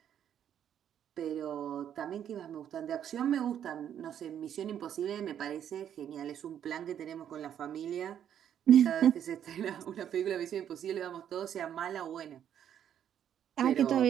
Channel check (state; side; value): quieter; left; 9.6 dB